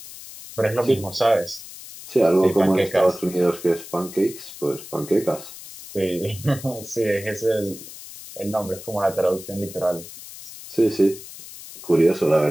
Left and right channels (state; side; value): noise; left; hiss, 15 dB below the sound